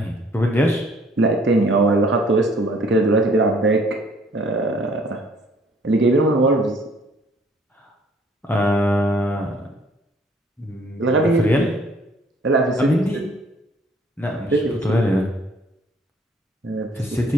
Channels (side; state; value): both; normal; correlation 0.60